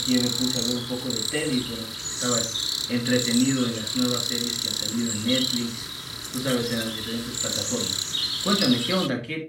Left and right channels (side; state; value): both; identical; correlation 1.00